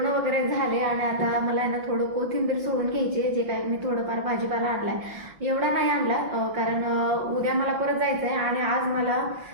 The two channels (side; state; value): left; late; 5.8 ms